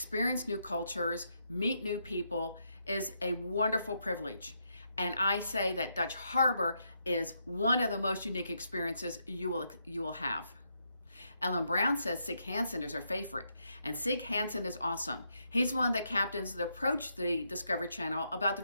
new cultures, meet new people is a wonderful privilege. And I say that Dutch Harbor is one of the most unique experiences you will have. Ellen Brown says Sig Hansen is her favorite, and Sig Hansen is awesome. He's one of the captains that approached the Discovery Channel about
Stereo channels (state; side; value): inverted; both; correlation -0.79